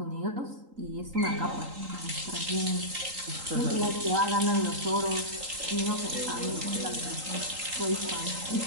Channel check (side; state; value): left; late; 3.8 ms